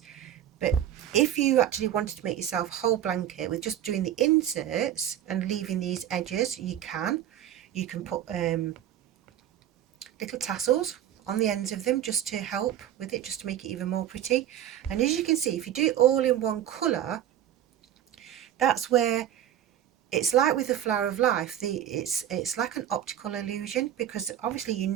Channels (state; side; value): quieter; left; 11.0 dB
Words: But if you actually wanted to make yourself a whole blanket with just doing the inserts and leaving these edges, you can put little tassels on the ends of them just to help with it, just to make it even more pretty. And as you can see, if you do it all in one colour, that's where it's like with the flower of life, it's like an optical illusion, because obviously you